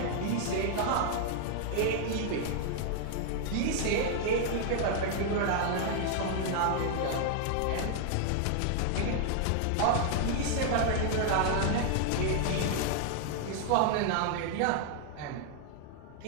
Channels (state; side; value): different; both; correlation 0.00